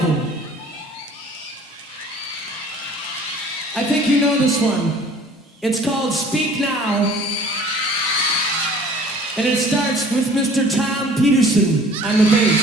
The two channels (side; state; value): both; normal; correlation 0.50